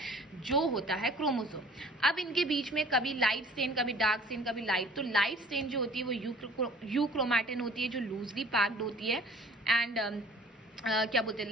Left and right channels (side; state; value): both; normal; correlation 0.50